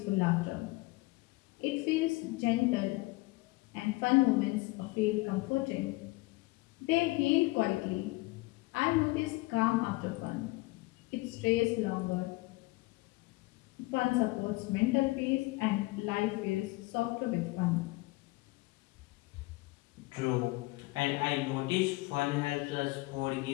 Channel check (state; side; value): quieter; right; 22.4 dB